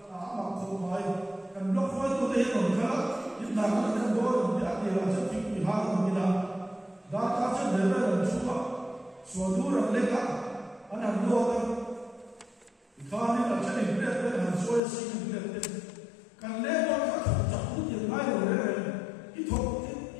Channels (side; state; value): right; drops out; at 14.8 s